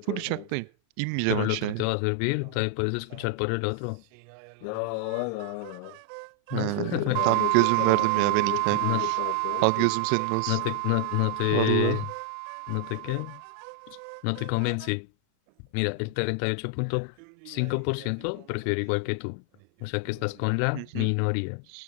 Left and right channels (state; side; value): different; both; correlation 0.00